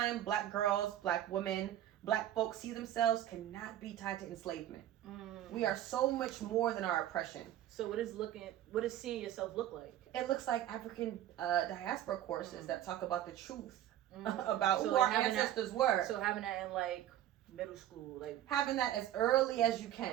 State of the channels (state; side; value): quieter; left; 12.2 dB